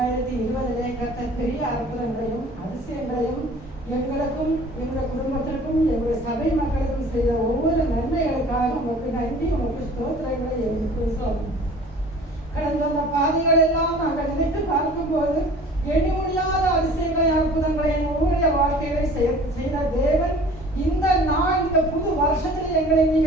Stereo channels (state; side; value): normal; both; correlation 0.47